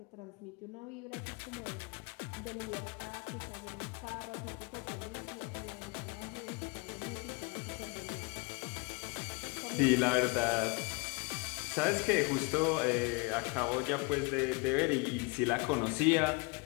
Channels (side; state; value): right; quieter; 28.7 dB